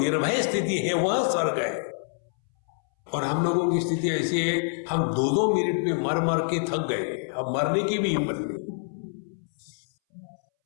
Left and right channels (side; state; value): right; silent; 60 dB below the other